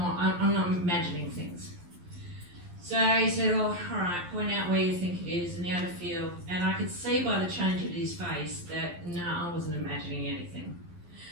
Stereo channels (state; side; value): late; left; 11 ms